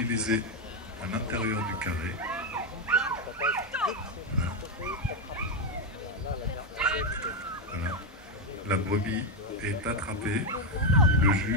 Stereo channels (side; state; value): both; normal; correlation 0.06